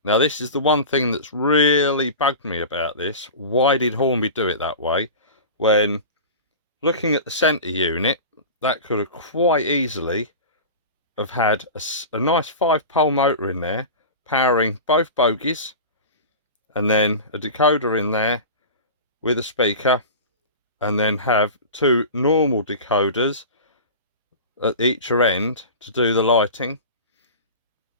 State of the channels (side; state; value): both; inverted; correlation -0.31